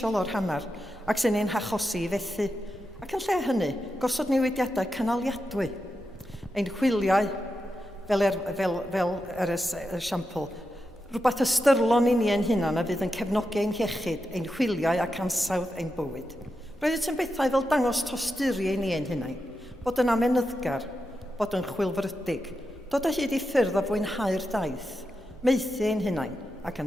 o'r hanner ac sy'n ein hachosi i fethu, ac yn lle hynny, gosod newidiadau cynaliadwy. Ein chwiliau, fel yr esiampl, rhywbeth ystyrlon i ni ein hunan a fydd yn cefnogi ein hiechyd, ein chwiliau ac ansawdd ein bywyd. Roedd yn bethau fel dangos tosturi i ni ein hunain, bod yn amenyddgar, bod yn chwilfrydig, dod o hyd i ffyrdd o fwynhau'r daith, meithu ein hunain ac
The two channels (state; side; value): normal; both; correlation 0.88